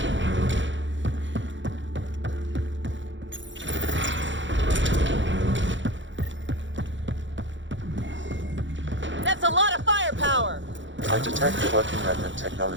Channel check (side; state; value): left; late; 0.54 ms